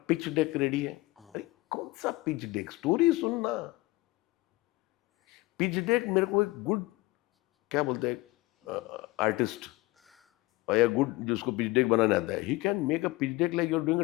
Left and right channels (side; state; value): right; quieter; 20.8 dB